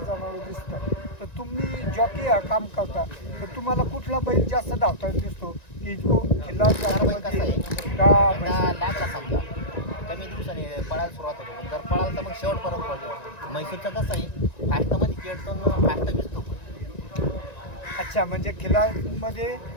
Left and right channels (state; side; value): late; right; 1.9 ms